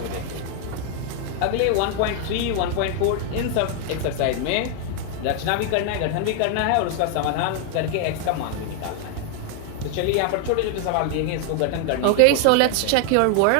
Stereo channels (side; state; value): both; different; correlation 0.00